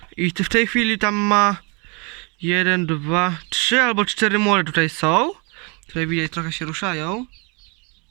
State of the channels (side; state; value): left; quieter; 31.6 dB